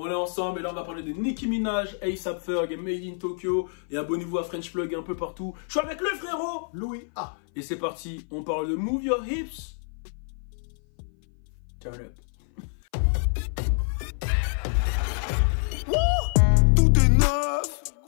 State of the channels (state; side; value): silent; right; 58 dB below the other